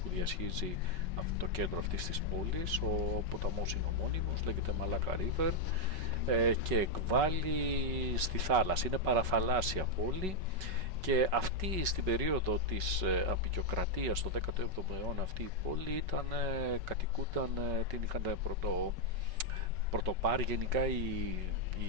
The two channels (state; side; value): late; left; 5.3 ms